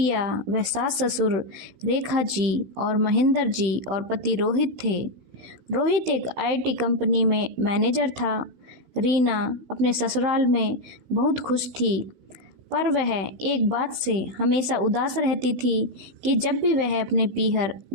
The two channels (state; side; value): late; left; 16 ms